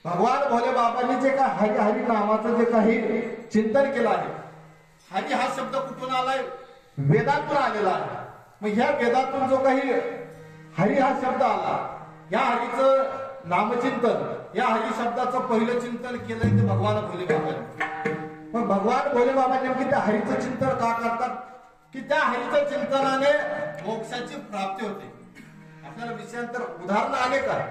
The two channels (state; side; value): identical; both; correlation 1.00